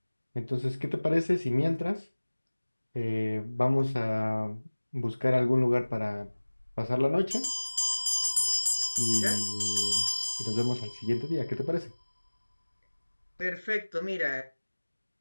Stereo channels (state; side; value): inverted; both; correlation -1.00